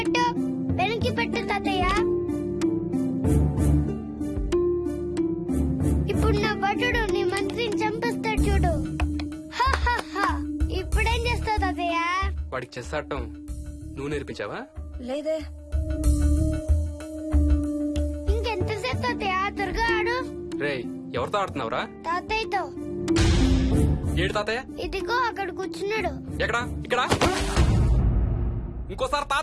వెనక్కి పెట్టు తాతయ్య. ఇప్పుడు నా భటుడు నీ మంత్రిని చంపేస్తాడు చూడు. ఇప్పుడేం చేస్తావు తాతయ్య? వాడికి చెస్ ఆడటం నువ్వు నేర్పించావా? లేదే. ఇంకెంతసేపు తాతయ్య? త్వరగా ఆడు. రేయ్, ఎవరితో ఆడుతున్నావురా? తాతయ్యతో. ఏడు తాతయ్య? ఇదిగో అక్కడ కూర్చున్నాడు. ఎక్కడా? ఇక్కడ. ఇంకోసారి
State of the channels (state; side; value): identical; both; correlation 1.00